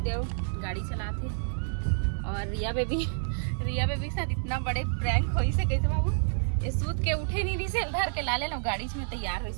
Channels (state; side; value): silent; left; 59 dB below the other